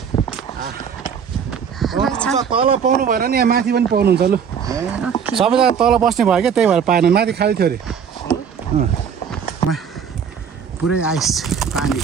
तल पाउनु भएन नि, यहाँ माथि पनि पाउनुहुन्छ। लु सबैजना तल बस्ने भयो क्या, त्यही भएर पाएन। माथि खाली थियो अरे। पुरै आइस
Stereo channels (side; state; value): left; quieter; 7.2 dB